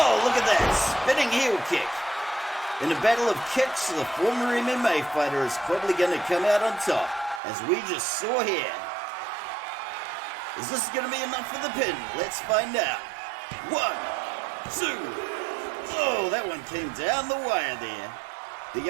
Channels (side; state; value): left; drops out; at 7.4 s